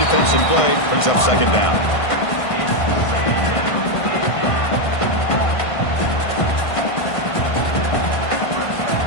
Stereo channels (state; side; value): late; right; 1.5 ms